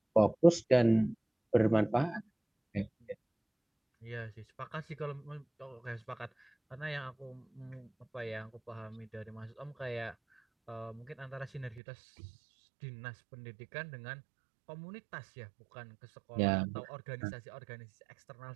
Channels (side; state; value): left; drops out; at 11.8 s